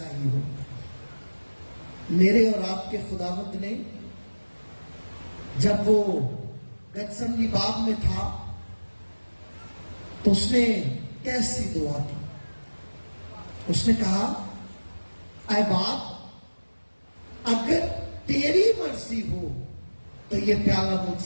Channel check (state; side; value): inverted; both; correlation -1.00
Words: ही हो। मेरे और आपके खुदावंद ने जब वो गतसमनी बाग में था तो उसने कैसी दुआ की। اس نے کہا اے باپ اگر تیری مرضی ہو تو یہ پیالہ مجھ